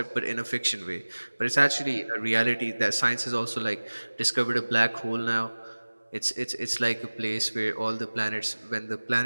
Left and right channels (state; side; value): inverted; both; correlation -1.00